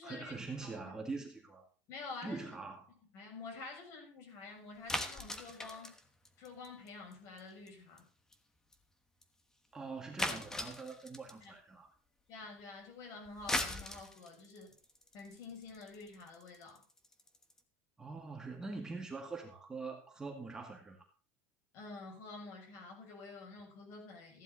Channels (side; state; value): both; normal; correlation 0.61